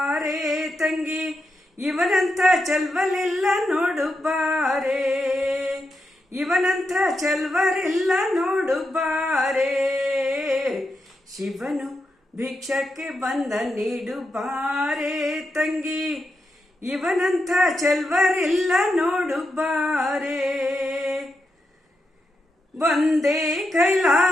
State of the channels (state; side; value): normal; both; correlation 0.86